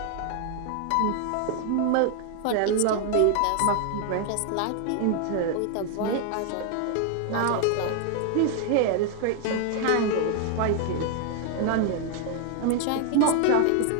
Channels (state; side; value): different; both; correlation 0.00